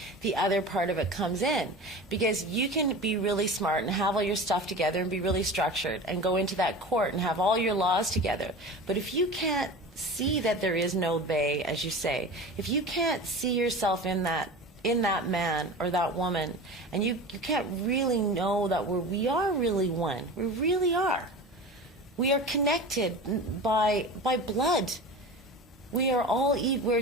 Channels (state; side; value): normal; both; correlation 0.33